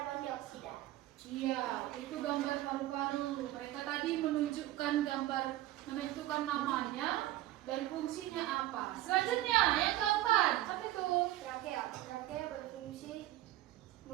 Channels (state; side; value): quieter; left; 15.2 dB